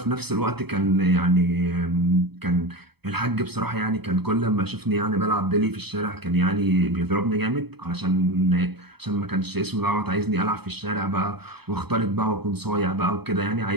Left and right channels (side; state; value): left; late; 0.97 ms